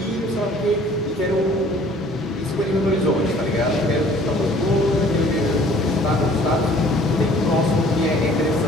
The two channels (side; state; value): both; normal; correlation 0.54